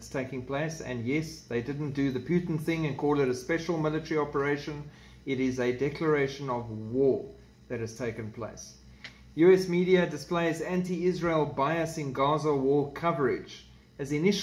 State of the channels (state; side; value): identical; both; correlation 1.00